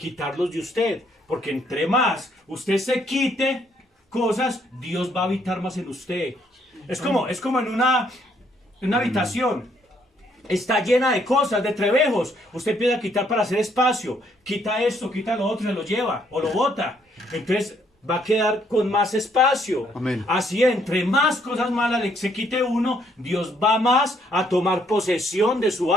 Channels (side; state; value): both; normal; correlation 0.69